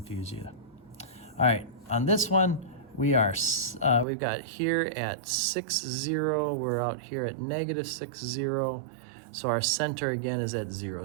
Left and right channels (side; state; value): left; drops out; at 4.0 s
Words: you. All right, on this one, we've got here at 6, 0. We're out here at negative 6, 0. So our center again is at 0,